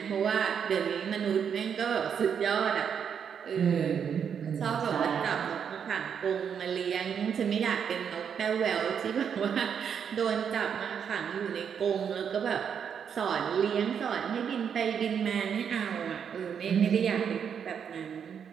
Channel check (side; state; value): left; quieter; 7.5 dB